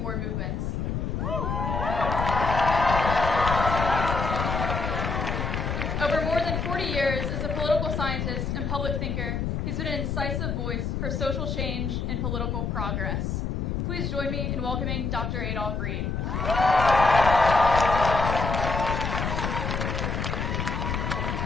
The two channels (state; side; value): noise; left; rumble, 1 dB below the sound